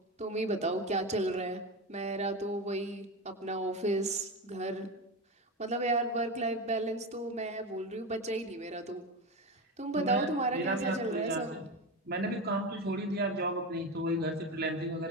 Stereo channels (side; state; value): both; normal; correlation 0.19